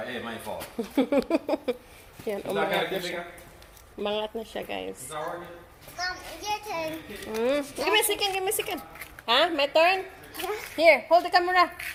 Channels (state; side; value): identical; both; correlation 1.00